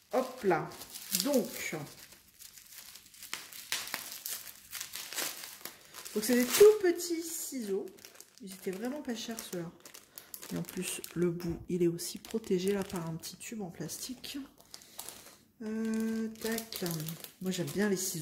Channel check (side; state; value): both; identical; correlation 1.00